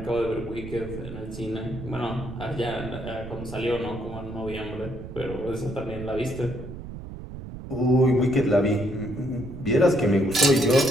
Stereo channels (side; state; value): right; noise; rumble, 11 dB below the sound